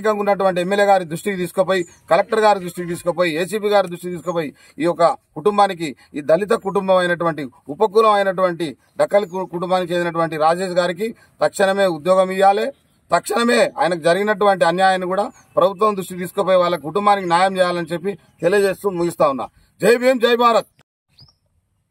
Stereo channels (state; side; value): identical; both; correlation 1.00